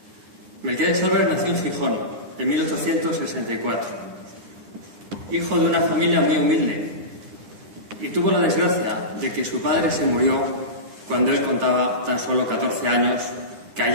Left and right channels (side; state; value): left; late; 10 ms